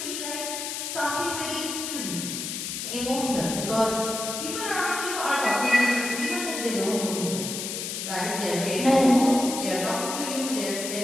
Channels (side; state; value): left; noise; hiss, 5 dB below the sound